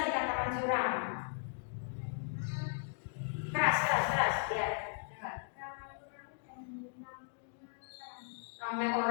dikatakan suram? Keras, ya. Ramai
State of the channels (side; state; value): right; silent; digital silence